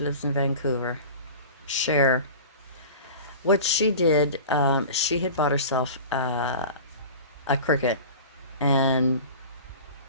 lives in Vancouver, Cher. What she did, she had bought herself a Cricut, and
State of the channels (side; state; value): both; inverted; correlation -0.36